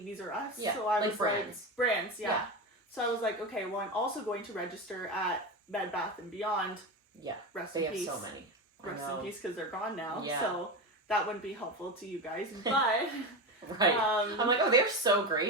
R Us. Yeah, so I was brands. Brands, yeah. So I was like, okay, well, I'm also going to register at Bed Bath & Beyond. Yeah, Rest in peace. They have so many. Rest in peace, because they're gone now. Yeah. So that wouldn't be helpful to you guys. But... right. I'm like, oh, they're so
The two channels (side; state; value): both; normal; correlation 0.19